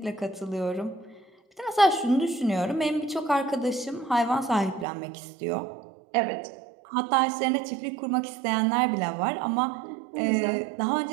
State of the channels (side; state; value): left; drops out; at 4.9 s